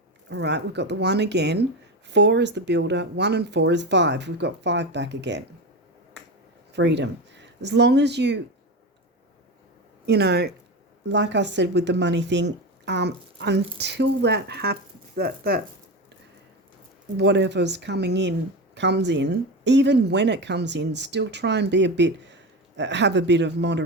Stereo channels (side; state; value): both; normal; correlation 0.21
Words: all right, we've got the 1 again. 4 is the builder, 1 and 4 is 5. We've got 5 back again. Freedom. As long as you know, like I said with the money thing, until that happens, that whatever's coming in comes in, even when it comes in, still try and be have a bit of